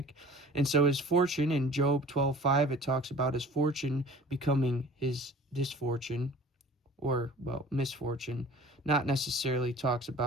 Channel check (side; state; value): both; normal; correlation 0.46